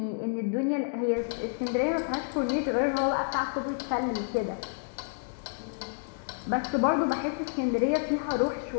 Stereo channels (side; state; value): right; silent; digital silence